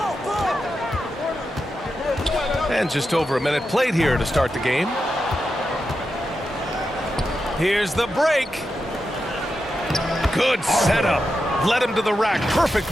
way. And just over a minute played here to start the game. Here's the break. Good setup. Led him to the rack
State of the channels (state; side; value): normal; both; correlation 0.88